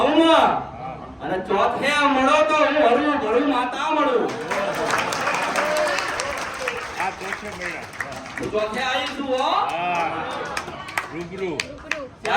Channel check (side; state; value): both; identical; correlation 1.00